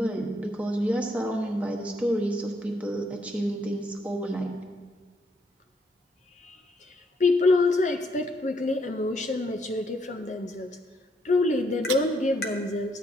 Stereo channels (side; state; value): both; normal; correlation 0.73